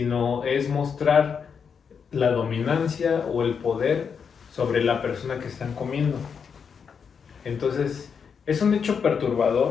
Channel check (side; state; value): right; quieter; 6.5 dB